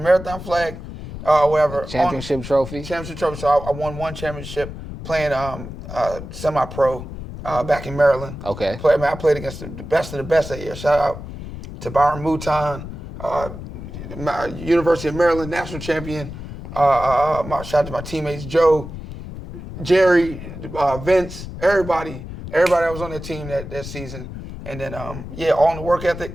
marathon flag, whatever. Championship trophy. Championship trophy. So I won one championship playing semi-pro back in Maryland. Okay. I played against the best of the best that year. Shout out to Byron Mouton, University of Maryland national champion. Shout out to my teammates Joe, Jerry, Vince, everybody that was on that team that season. And then, all in the work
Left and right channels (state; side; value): noise; left; rumble, 10 dB below the sound